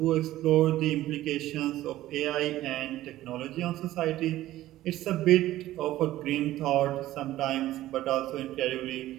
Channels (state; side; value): quieter; left; 14.9 dB